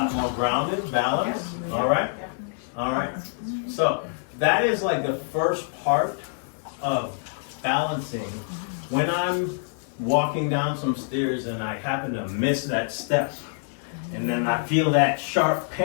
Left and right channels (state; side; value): silent; right; 56 dB below the other